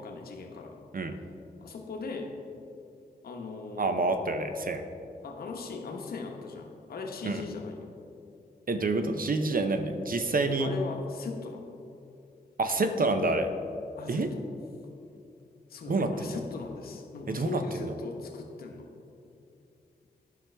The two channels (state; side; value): normal; both; correlation 0.47